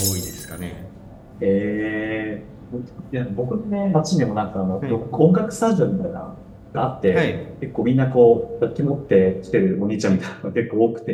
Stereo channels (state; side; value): identical; both; correlation 1.00